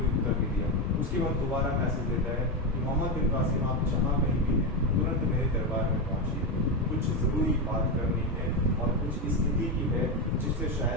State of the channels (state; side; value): normal; both; correlation 0.12